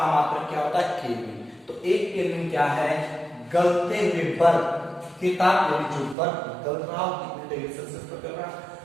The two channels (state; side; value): drops out; left; at 6.2 s